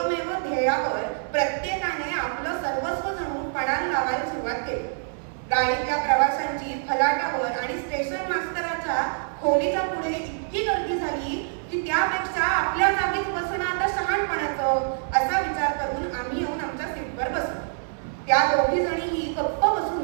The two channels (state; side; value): silent; left; 59 dB below the other